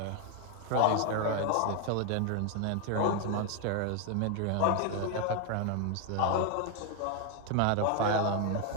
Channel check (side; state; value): both; different; correlation 0.01